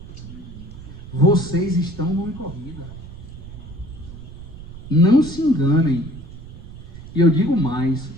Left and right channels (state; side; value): noise; right; rumble, 15 dB below the sound